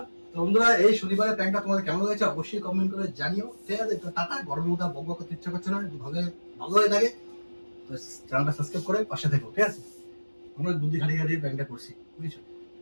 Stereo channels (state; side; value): inverted; both; correlation -1.00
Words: তো বন্ধুরা এই শনিবারের প্যান্টটা তোমাদের কেমন লাগছে অবশ্যই কমেন্ট করে জানিও, ঠিক আছে? তো টাটা, গরমের মধ্যে বক বক করতে ইচ্ছা করছে না, ভালো ভালো হয়ে থাকে তো চ্যানেলটা সাবস্ক্রাইব করে পাশে থেকো, ঠিক আছে? আমরা বুদ্ধি খাটিয়ে খাটিয়ে প্যান্টটা করছি, বুঝছো?